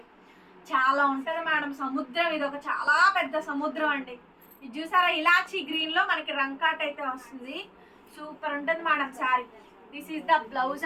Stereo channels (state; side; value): identical; both; correlation 1.00